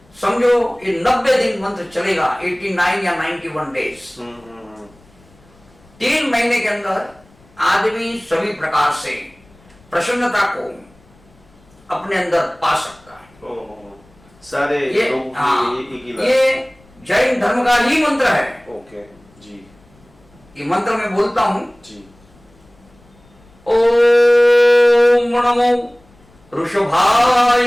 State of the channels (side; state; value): left; noise; rumble, 29 dB below the sound